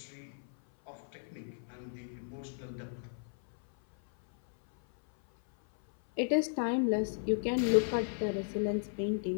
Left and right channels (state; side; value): silent; right; 55 dB below the other